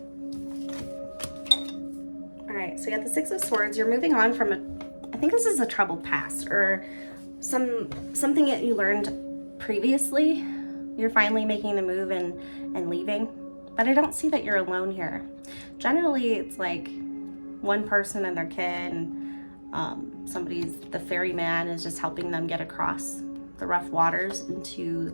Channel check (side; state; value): both; inverted; correlation -1.00